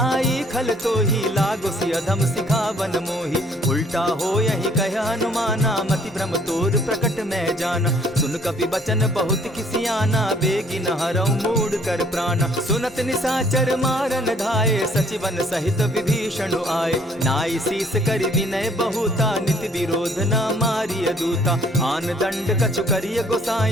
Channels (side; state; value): both; normal; correlation 0.61